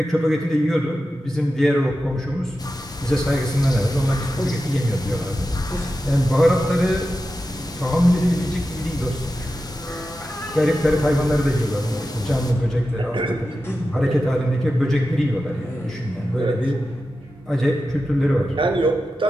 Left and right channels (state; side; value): normal; both; correlation 0.92